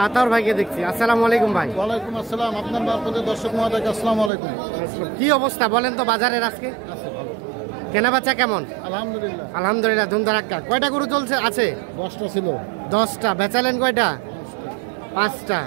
আতাউর ভাইকে দেখছি। আসসালামু আলাইকুম ভাই। ওয়ালাইকুম আসসালাম। আপনার মারফতে দর্শক মহোদয়কে আসসালামু আলাইকুম। কি অবস্থা বলেন তো বাজারের আজকে? কেনা বেচা কেমন? আলহামদুলিল্লাহ। আলহামদুলিল্লাহ, ধুমধারাক্কা। কয়টা গরু চলছে আছে? 10টা ছিল। 10টা। বেচালেন কয়টা? 5টা।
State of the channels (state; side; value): drops out; left; at 4.3 s